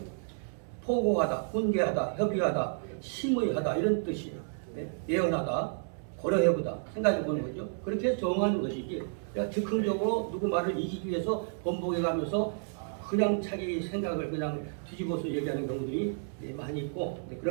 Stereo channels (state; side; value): silent; left; digital silence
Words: 포고하다, 훈계하다, 협의하다, 심의하다 이런 뜻이에요. 네? 예언하다, 고려해보다, 생각해보는 거죠. 그렇게 정하는 것이지 내가 즉흥적으로 누구 말을 이기기 위해서 번복해가면서 그냥 자기 생각을 그냥 뒤집어서 얘기하는 경우들이 많이 있고,